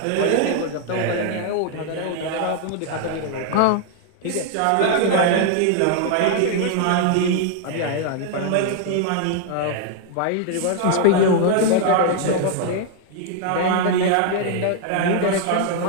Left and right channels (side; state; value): both; different; correlation 0.00